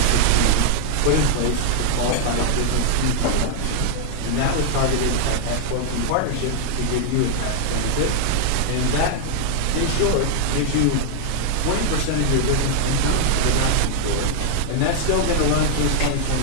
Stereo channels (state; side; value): different; both; correlation 0.00